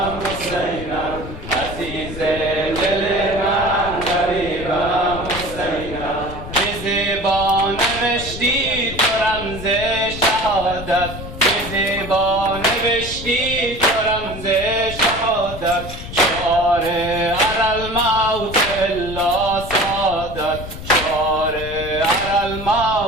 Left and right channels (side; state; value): left; noise; rumble, 10 dB below the sound